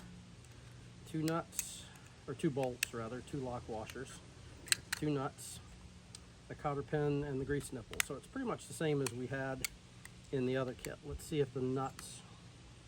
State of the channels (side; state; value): both; identical; correlation 1.00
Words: two nuts, or two bolts rather, two lock washers, two nuts, a cotter pin, and the grease nipple. So it's pretty much the same as we had in the other kit. Let's see if the nuts